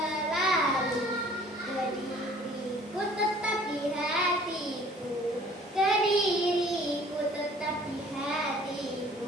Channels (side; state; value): both; normal; correlation 0.53